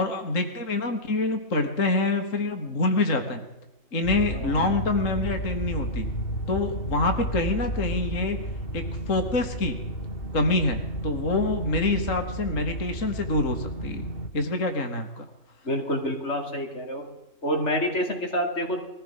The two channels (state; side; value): late; right; 3.7 ms